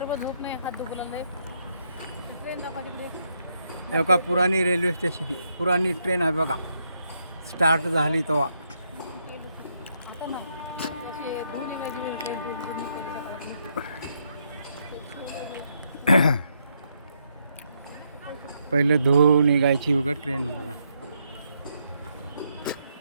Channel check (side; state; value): both; inverted; correlation -0.77